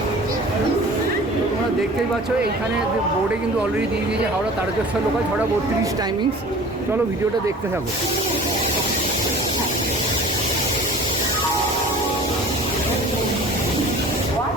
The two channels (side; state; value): both; normal; correlation 0.44